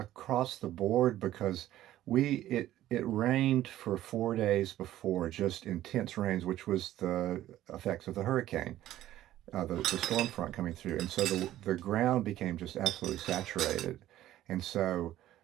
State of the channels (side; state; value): left; quieter; 13.7 dB